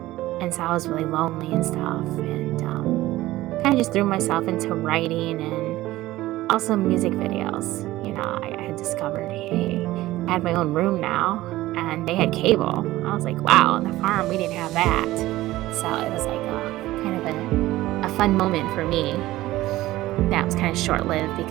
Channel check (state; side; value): quieter; left; 16.7 dB